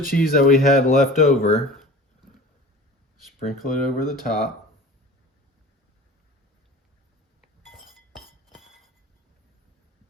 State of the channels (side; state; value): both; normal; correlation 0.40